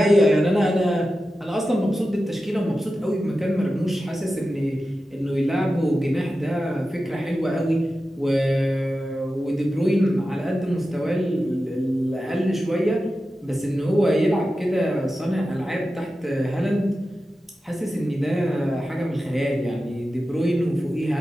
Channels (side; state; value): both; normal; correlation 0.92